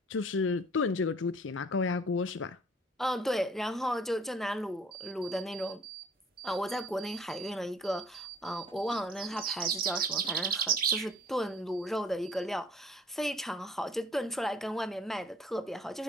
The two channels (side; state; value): both; normal; correlation 0.54